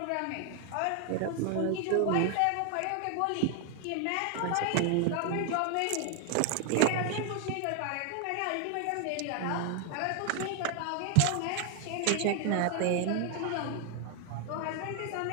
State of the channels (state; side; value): different; both; correlation 0.00